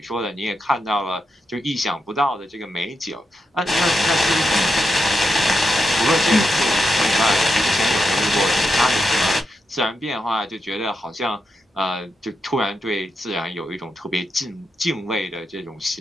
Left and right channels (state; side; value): normal; both; correlation 0.86